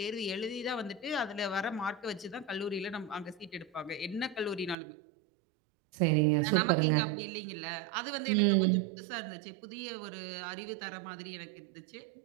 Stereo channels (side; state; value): left; drops out; at 4.8 s